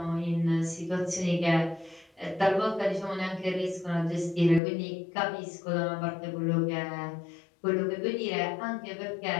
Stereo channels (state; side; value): drops out; right; at 4.6 s